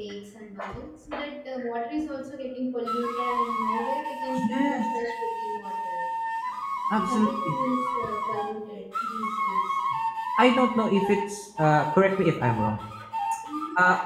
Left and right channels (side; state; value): both; identical; correlation 1.00